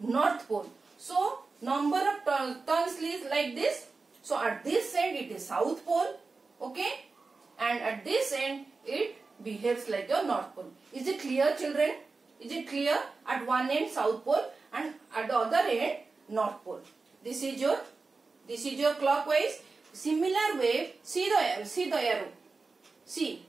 Pole. So number of turns is like this. So at this end it is South Pole, okay, and at this end it behaves like your North Pole. Is it clear, children? Is it clear? At one end South Pole and at the other end North Pole. This is your clockwise. Similar way, see the arrow. See,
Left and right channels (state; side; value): quieter; left; 4.0 dB